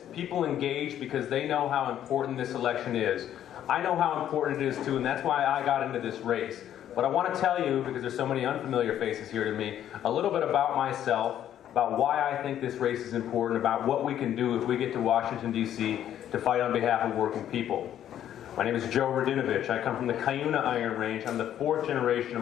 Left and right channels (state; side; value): quieter; right; 10.9 dB